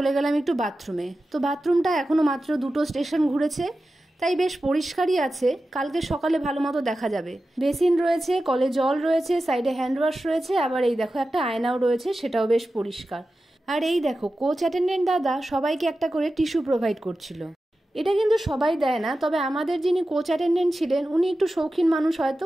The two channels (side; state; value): both; normal; correlation 0.93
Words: গেলাম একটু বাথরুমে। তো বাথরুমটা এখনো মাত্র 2টো স্টেশন ঘুরেছে, তাই বেশ পরিষ্কারই আছে। কালকে সকালে ভালো মতো দেখা যাবে। বেসিন রয়েছে, কলে জল রয়েছে, সাইডে হ্যান্ড ওয়াশ রয়েছে, আবার এই দেখো একটা আয়নাও রয়েছে, সেটাও বেশ পরিষ্কার। আর এই দেখো, কোচ অ্যাটেন্ডেন্ট দাদা সবাইকে একটা করে টিস্যু প্রোভাইড করছিল। এটা কিন্তু সবাই দেয় না, তবে আমাদের যিনি কোচ অ্যাটেন্ডেন্ট ছিলেন উনি একটু শৌখিন মানুষ, হয়তো